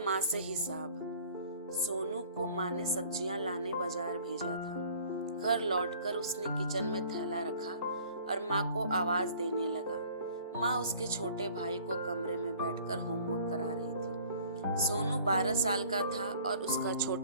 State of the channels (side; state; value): both; inverted; correlation -0.52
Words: से हिसाब। सोनू को माँ ने सब्जियां लाने बाजार भेजा था। घर लौटकर उसने किचन में थैला रखा और माँ को आवाज देने लगा। माँ उसके छोटे भाई को कमरे में बैठकर होमवर्क करा रही थी। सोनू 12 साल का था और उसका